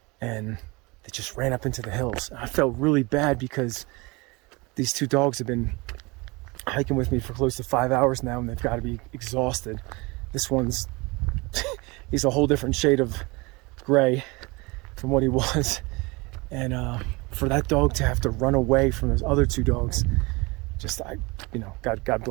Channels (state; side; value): quieter; left; 25.5 dB